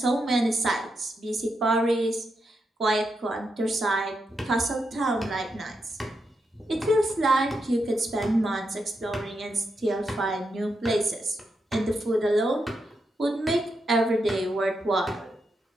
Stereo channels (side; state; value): both; normal; correlation 0.84